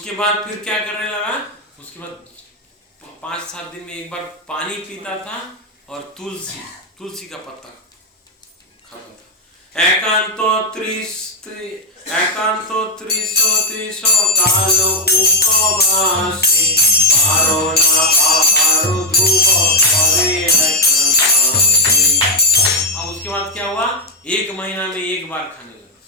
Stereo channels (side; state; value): both; normal; correlation 0.02